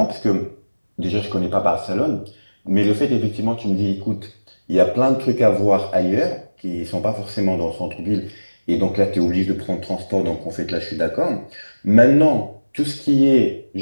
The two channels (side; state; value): both; inverted; correlation -1.00